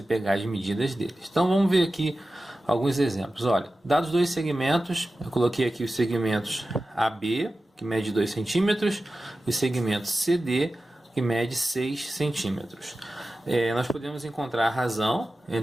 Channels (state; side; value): normal; both; correlation 0.94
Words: pegar as medidas deles. Então vamos ver aqui alguns exemplos. Olha, dados dois segmentos, eu coloquei aqui os segmentos AB, que mede 2 centímetros, e o segmento CD, que mede 6 centímetros. Nós podemos encontrar a razão